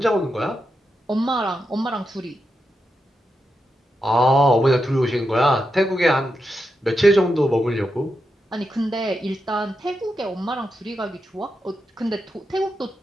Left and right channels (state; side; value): normal; both; correlation 0.86